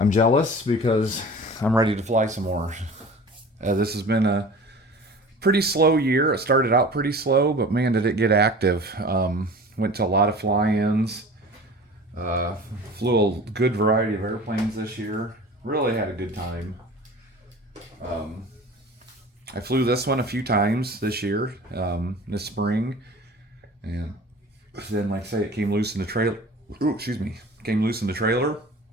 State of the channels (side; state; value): both; normal; correlation 0.40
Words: jealous because I'm ready to fly some more. This has been a pretty slow year. It started out pretty slow, but man, did it get active. Went to a lot of fly-ins. Flew a good variety of airplanes this year. Really had a good time. I flew this one a few times this year, this spring, and then, like I say, it came loose in the trailer. Came loose in the trailer,